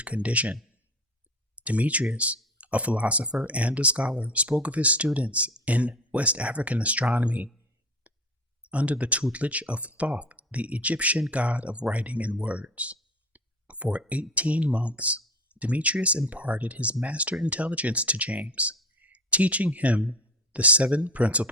condition. Demetrius, a philosopher and a scholar, spoke of his students in West African astronomy under the tutelage of Thoth, the Egyptian god of writing and words. For 18 months, Demetrius imparted his master intelligence to James, teaching him the 7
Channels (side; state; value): both; normal; correlation 0.34